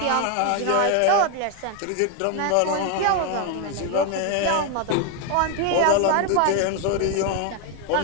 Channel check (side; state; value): both; different; correlation 0.01